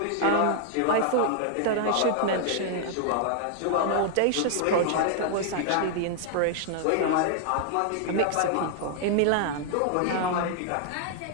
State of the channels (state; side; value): different; both; correlation 0.00